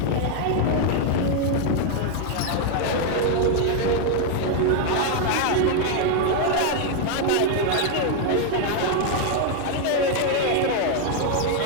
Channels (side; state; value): both; different; correlation 0.00